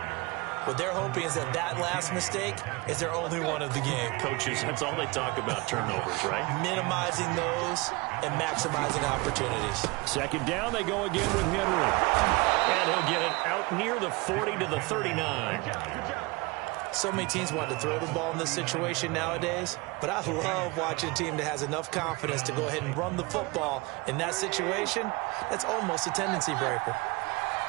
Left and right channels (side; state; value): left; quieter; 25.0 dB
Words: What they're hoping is that that last mistake is their only one of the game. Coaches, that's all they talk about, turnovers, right? Minimizing those and maximizing opportunities. Second down, they go again with Henry. And he'll get it out near the 40 to the 39. So many teams want to throw the ball in this situation nowadays, but I love watching a team that has enough confidence to go ahead and run the football. In that situation, that's almost a tendency breaker.